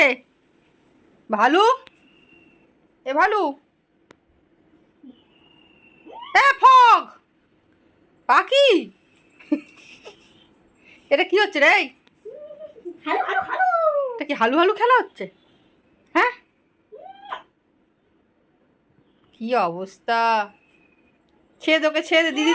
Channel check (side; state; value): both; identical; correlation 1.00